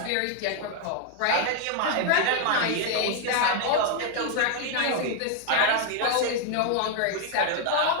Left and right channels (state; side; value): different; both; correlation 0.00